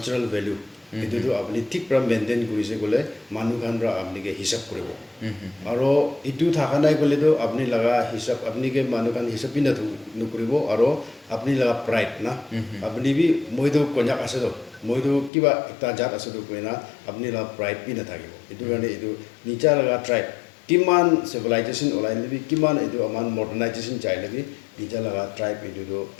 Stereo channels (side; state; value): right; drops out; at 15.3 s